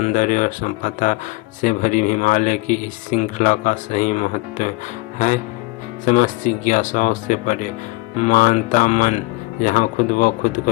और संपदा से भरी हिमालय की इस श्रृंखला का सही महत्व है। समस्त जिज्ञासाओं से परे मानता मन जहाँ खुद व खुद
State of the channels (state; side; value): quieter; right; 23.4 dB